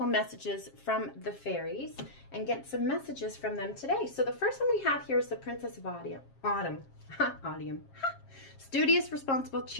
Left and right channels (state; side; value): late; right; 7.4 ms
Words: messages from the fairies and get some messages from them today. So the first one we have here is the Princess of Autumn. Studious, responsible,